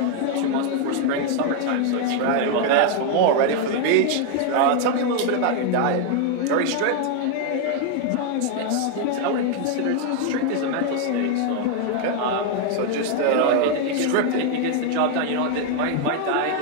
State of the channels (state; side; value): different; both; correlation 0.01